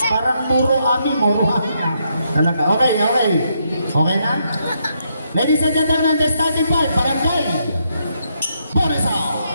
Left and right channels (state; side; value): inverted; both; correlation -0.77